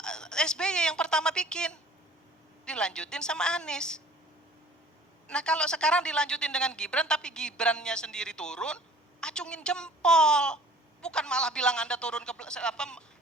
SBY yang pertama bikin. Dilanjutin sama Anies. Nah kalau sekarang dilanjutin dengan Gibran, tapi Gibrannya sendiri turun, acungin jempol. Bukan malah bilang Anda turun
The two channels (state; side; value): normal; both; correlation 0.50